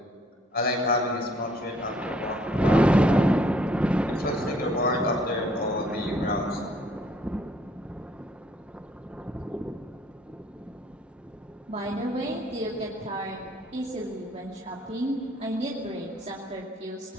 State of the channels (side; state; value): both; normal; correlation 0.63